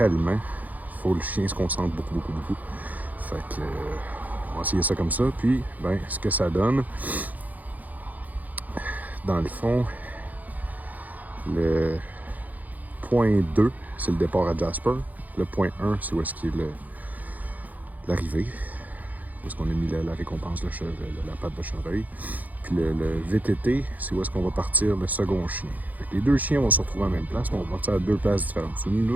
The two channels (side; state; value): left; late; 0.080 ms